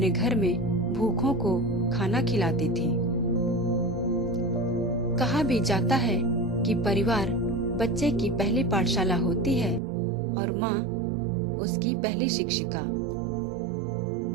घर में भूखों को खाना खिलाती थी। कहा भी जाता है कि परिवार बच्चे की पहली पाठशाला होती है और माँ उसकी पहली शिक्षिका।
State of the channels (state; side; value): drops out; left; at 9.8 s